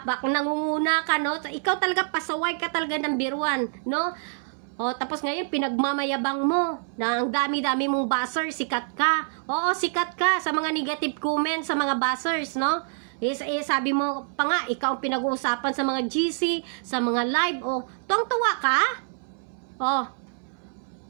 nangunguna ka, no? Ikaw talaga, pasaway ka talaga ng biruan, no? O, tapos ngayon, pinagmamayabang mo na ang dami-dami mong buzzer, sikat ka. Oo, sikat ka sa mga negative comments sa mga buzzers, no? Sabi mo pa nga, ikaw ang pinag-uusapan sa mga GC, sa mga live, o, tuwang-tuwa ka? O,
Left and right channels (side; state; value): left; silent; 61 dB below the other